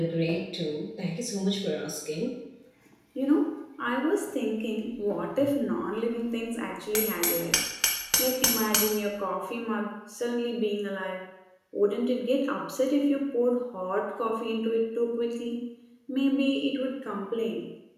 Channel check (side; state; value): both; identical; correlation 1.00